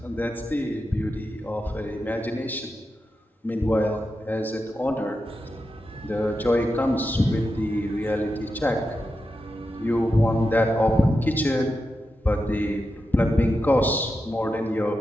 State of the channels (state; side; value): normal; both; correlation 0.89